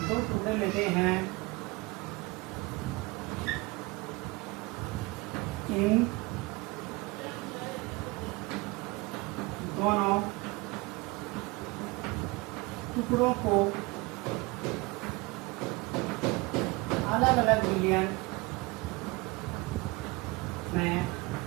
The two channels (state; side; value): quieter; left; 24.3 dB